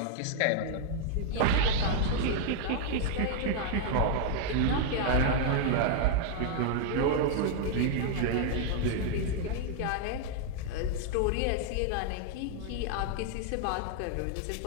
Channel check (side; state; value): both; different; correlation 0.00